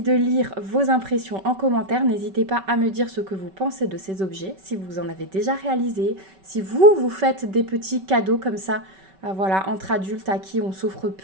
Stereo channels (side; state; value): left; late; 5.2 ms